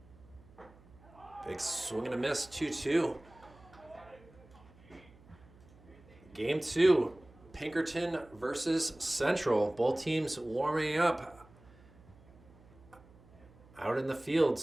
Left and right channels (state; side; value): noise; right; hum, 25 dB below the sound